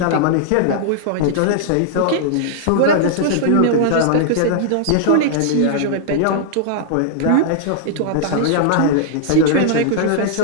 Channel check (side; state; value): both; different; correlation -0.01